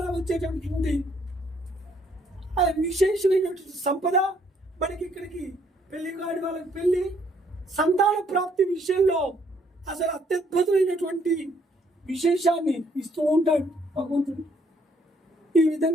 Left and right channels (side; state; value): both; normal; correlation 0.67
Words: వచ్చేటటువంటి విశేషమైనటువంటి సంపద మనకి ఇక్కడికి పెళ్లి కాని వాళ్ళకి పెళ్లి, సంతాన ప్రాప్తి విషయంలో అసలు అత్యద్భుతమైనటువంటి విశేషాన్ని ఇస్తూ ఉంటాడు భగవంతుడు. ఈ